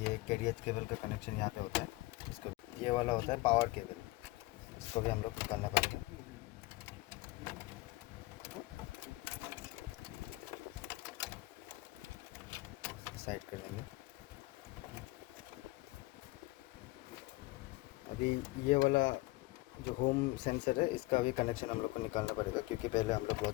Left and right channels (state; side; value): quieter; right; 20.9 dB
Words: ये कैरियर केबल का कनेक्शन यहाँ पे होता है। इसको ये वाला होता है पावर केबल, इसको भी हम लोग निकालना पड़ेगा। साइड कर लेंगे। अभी ये वाला जो होम सेंसर है इसका भी कनेक्शन हम लोग को निकालना पड़ेगा, क्योंकि पहले हम लोग